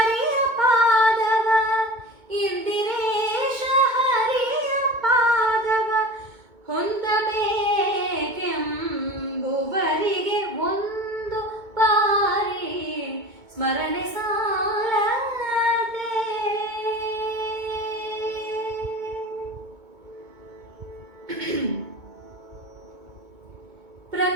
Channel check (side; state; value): left; late; 2.2 ms